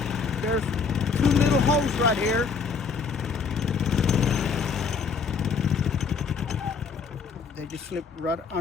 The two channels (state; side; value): quieter; right; 5.3 dB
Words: There's two little holes right here. They just slip right